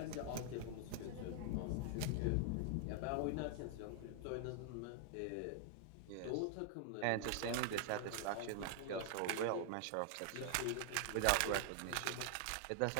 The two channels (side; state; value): both; different; correlation 0.00